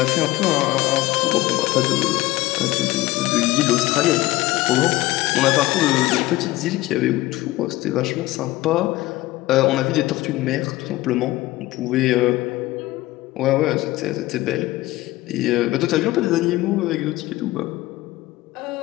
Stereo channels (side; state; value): right; quieter; 18.1 dB